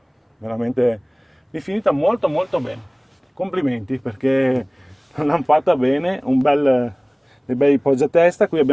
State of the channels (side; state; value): both; identical; correlation 1.00